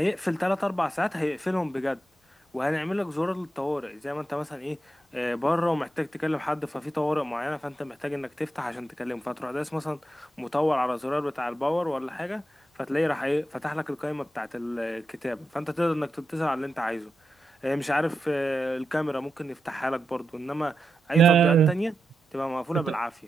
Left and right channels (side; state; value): both; normal; correlation 0.88